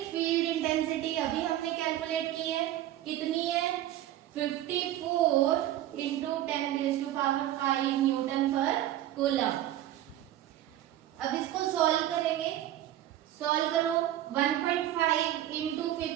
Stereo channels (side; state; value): left; quieter; 13.1 dB